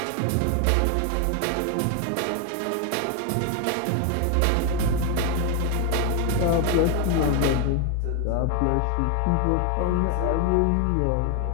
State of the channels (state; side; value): different; both; correlation 0.01